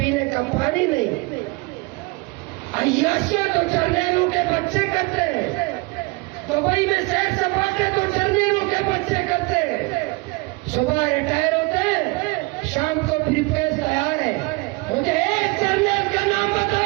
کا پانی نہیں. عیاشیاں تو جرنیلوں کے بچے کرتے ہیں، دبئی میں سیر سپاٹے تو جرنیلوں کے بچے کرتے ہیں. صبح ریٹائر ہوتے ہیں، شام کو بھی پیس تیار ہے. مجھے ایک جرنیل کا نام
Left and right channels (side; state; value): left; quieter; 26.4 dB